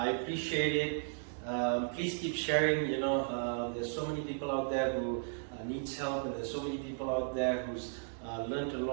appreciate it. Please keep sharing. There's so many people out there who needs help, and there's so many people out there who's learned a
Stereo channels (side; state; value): left; silent; digital silence